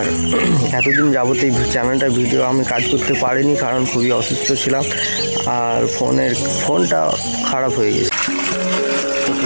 এতদিন যাবত এই চ্যানেলটা ভিডিও আমি কাজ করতে পারিনি, কারণ খুবই অসুস্থ ছিলাম আর ফোনটা খারাপ হয়ে গেছে।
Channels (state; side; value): inverted; both; correlation -1.00